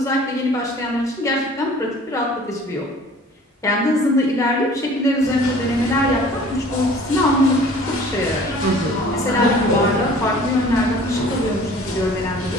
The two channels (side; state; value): both; normal; correlation 0.48